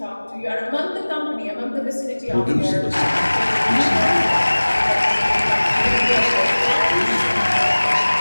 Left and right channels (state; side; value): inverted; both; correlation -1.00